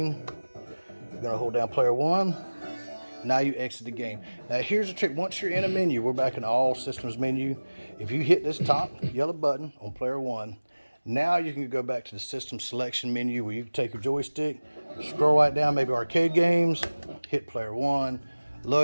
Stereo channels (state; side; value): inverted; both; correlation -1.00